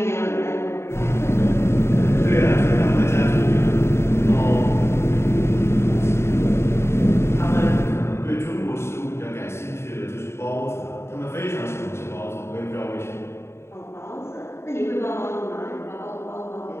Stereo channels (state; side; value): late; right; 0.13 ms